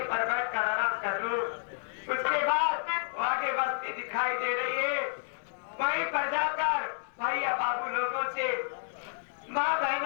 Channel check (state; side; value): silent; right; 57 dB below the other